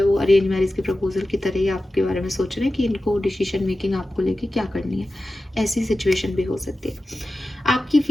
वो अरेंज मैरिज के प्रपोजल की तरह ही आपके बारे में सोच रहे हैं कि इनको डिसीजन मेकिंग आपको लेके क्या करनी है। ऐसी सिचुएशन भी हो सकती है। आपकी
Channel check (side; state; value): both; normal; correlation 0.94